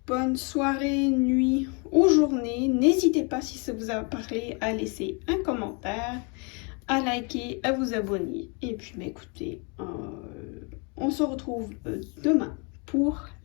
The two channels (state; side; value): quieter; right; 34.0 dB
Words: bonne soirée, nuit ou journée. N'hésitez pas, si ça vous a parlé, à laisser un commentaire, à liker, à vous abonner. Et puis, écoutez, on se retrouve demain pour